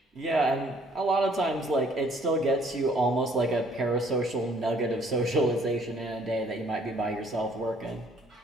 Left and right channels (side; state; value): both; normal; correlation 0.61